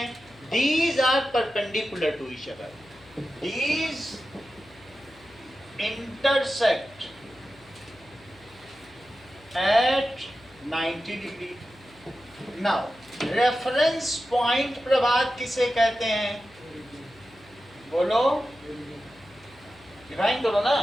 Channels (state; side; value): noise; left; hum, 26 dB below the sound